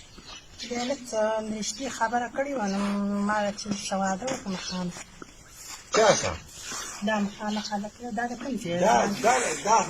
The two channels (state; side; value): identical; both; correlation 1.00